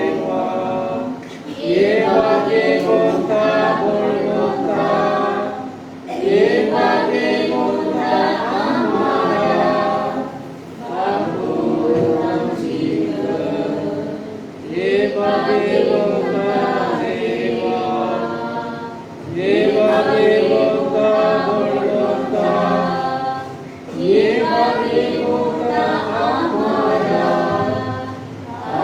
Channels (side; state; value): both; identical; correlation 1.00